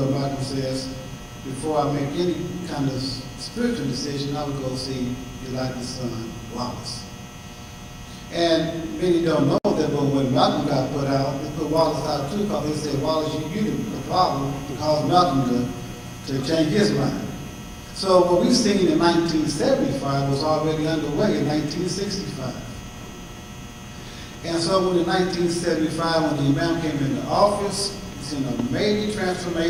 Malcolm says, before I make any kind of spiritual decision, I would go see Elijah's son, Wallace. And many don't know that, but when Malcolm got put out, they put Wallace out too, because they said, Wallace, you the problem, to cause Malcolm to change his mind. So what we've seen in 1975 was already underway in 1965. And so when in 1975, when the Imam came into office, it's in a major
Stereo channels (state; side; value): identical; both; correlation 1.00